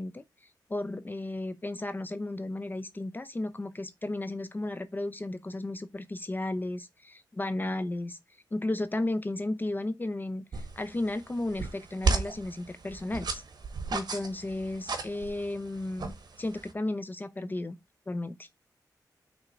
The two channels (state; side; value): normal; both; correlation 0.86